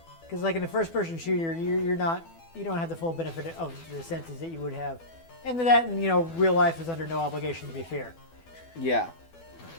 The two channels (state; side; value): late; right; 12 ms